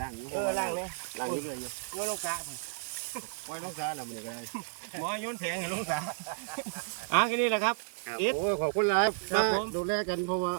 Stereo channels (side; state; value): left; silent; digital silence